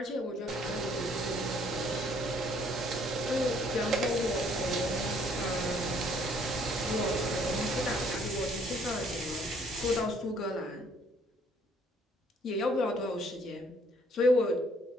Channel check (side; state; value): both; normal; correlation 0.63